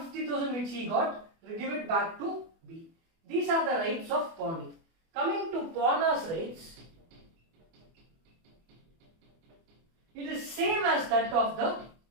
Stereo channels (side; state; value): left; late; 24 ms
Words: 50,000 which he got, give it back to B. These are the rights of pawnee. Coming to pawner's rights, it is same as that of the